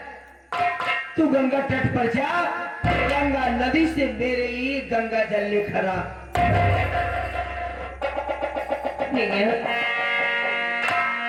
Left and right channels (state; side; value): identical; both; correlation 1.00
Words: तू गंगा तट पर जा, गंगा नदी से मेरे लिए गंगा जल लेकर आ।